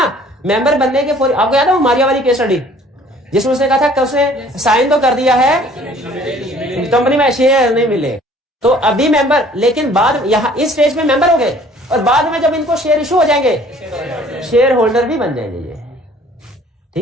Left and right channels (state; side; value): normal; both; correlation 0.54